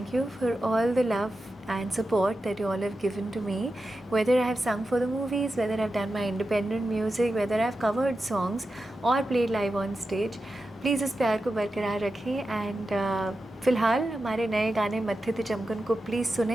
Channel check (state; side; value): normal; both; correlation 0.91